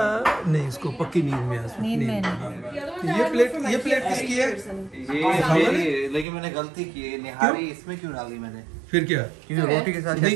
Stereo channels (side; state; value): left; drops out; at 6.2 s